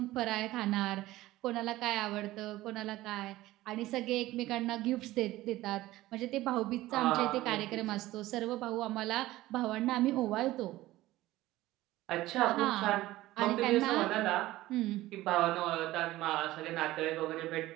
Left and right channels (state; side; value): quieter; left; 16.8 dB